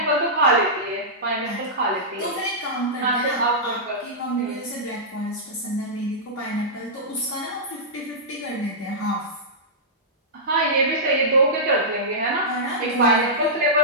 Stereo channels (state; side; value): normal; both; correlation -0.13